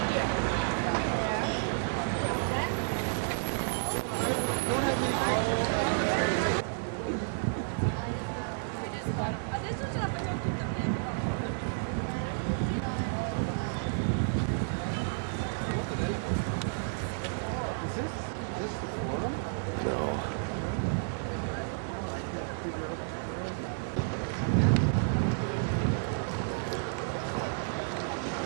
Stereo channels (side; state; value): left; silent; 57 dB below the other